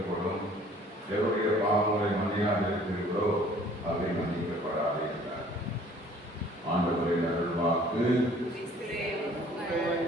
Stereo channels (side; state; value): both; normal; correlation 0.54